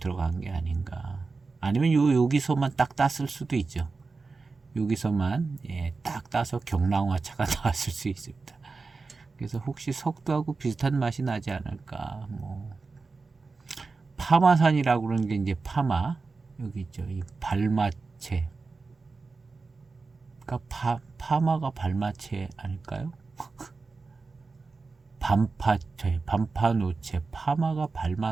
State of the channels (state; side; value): quieter; left; 4.1 dB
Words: 게 아닌가. 아니면 여기서만 딱 땄을 수도 있죠. 여기서만 딱 따서 경랑화차가 나왔을 수 있습니다. 그래서 혹시 석두하고 비슷한 맛이 나지 않을까. 파마산이라고 그러는 게 이제 파마 여기 있죠. 이 발마체. 그러니까 파마가 발마체 아닐까요? 반파노체, 파마가